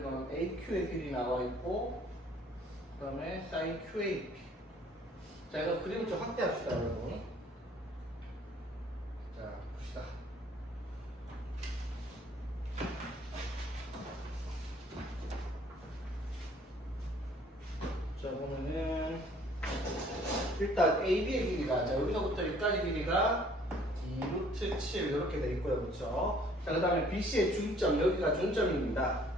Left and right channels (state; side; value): normal; both; correlation 0.58